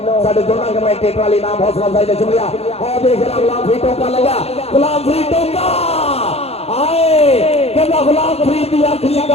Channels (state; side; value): late; right; 0.30 ms